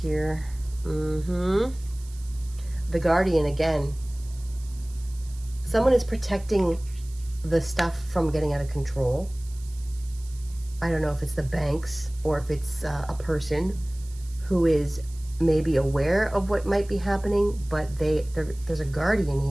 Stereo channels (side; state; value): right; noise; hiss, 22 dB below the sound